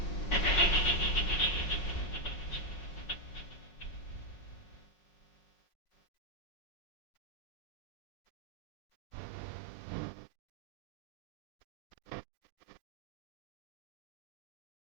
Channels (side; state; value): right; late; 5.5 ms